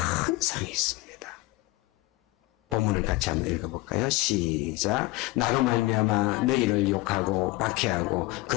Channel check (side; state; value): right; quieter; 20.5 dB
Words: 상이 있습니다. 본문을 같이 한번 읽어볼까요? 시작. 나로 말미암아 너희를 욕하고 박해하고